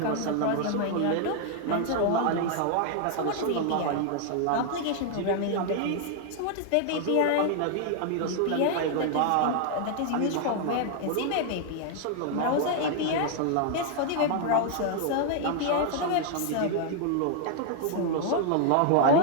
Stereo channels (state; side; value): different; both; correlation 0.00